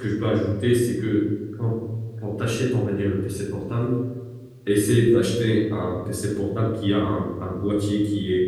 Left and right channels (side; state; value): both; identical; correlation 1.00